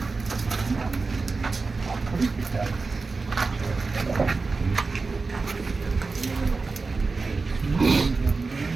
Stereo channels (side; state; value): left; quieter; 4.1 dB